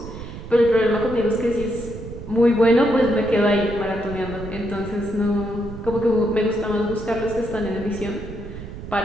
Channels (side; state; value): right; noise; rumble, 11 dB below the sound